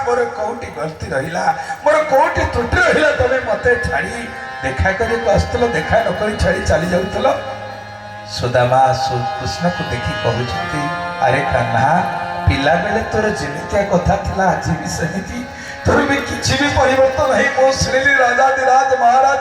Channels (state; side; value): identical; both; correlation 1.00